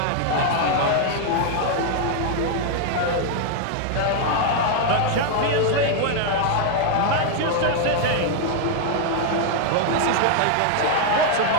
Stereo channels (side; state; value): both; different; correlation 0.00